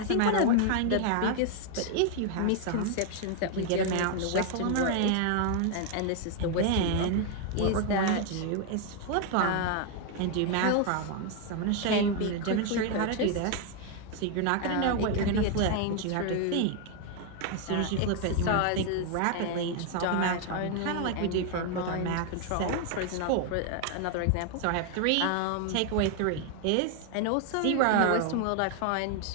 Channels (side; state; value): both; different; correlation 0.01